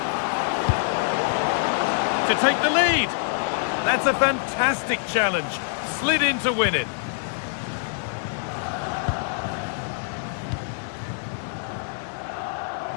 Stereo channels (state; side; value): silent; right; digital silence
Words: To take the lead. That's a fantastic challenge. Slid in to win it.